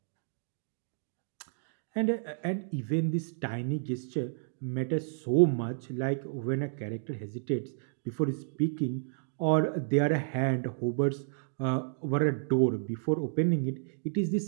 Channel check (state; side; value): silent; left; digital silence